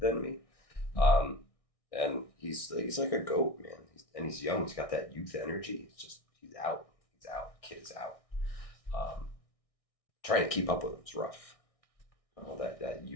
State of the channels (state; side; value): late; right; 1.6 ms